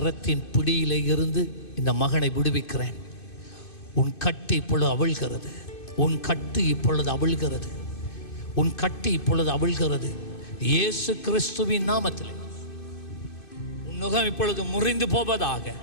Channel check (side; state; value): right; late; 2.6 ms